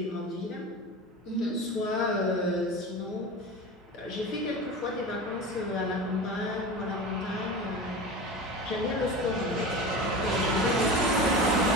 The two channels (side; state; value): both; normal; correlation 0.31